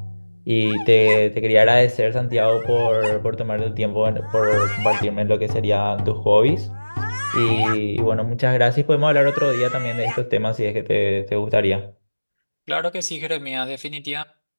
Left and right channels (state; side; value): inverted; both; correlation -1.00